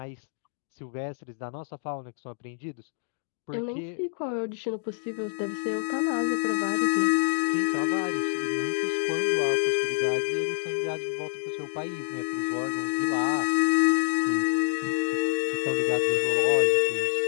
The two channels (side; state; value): right; silent; digital silence